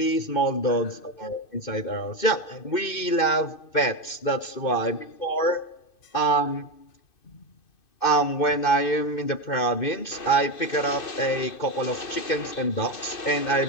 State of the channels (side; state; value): right; late; 2.6 ms